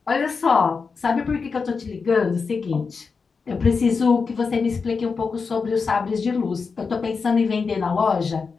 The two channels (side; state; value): right; quieter; 5.0 dB